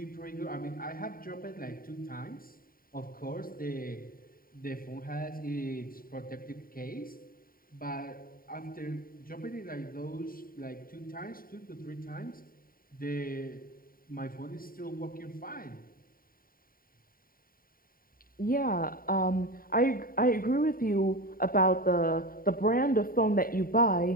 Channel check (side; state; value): right; late; 0.42 ms